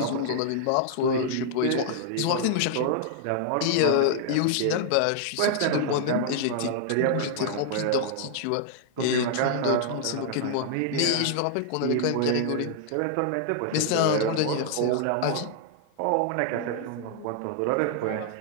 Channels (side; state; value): both; different; correlation -0.01